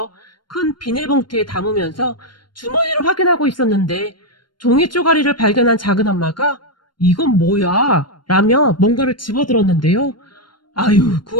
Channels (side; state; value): right; late; 0.72 ms